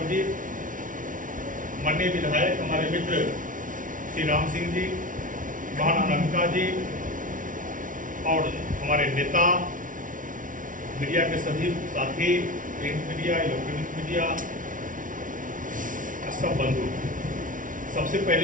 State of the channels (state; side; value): late; left; 0.38 ms